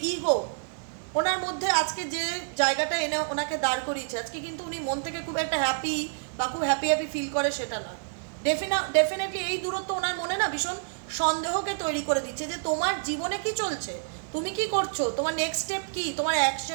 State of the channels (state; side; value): silent; left; digital silence